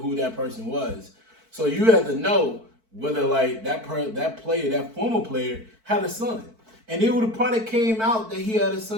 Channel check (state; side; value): late; left; 4.5 ms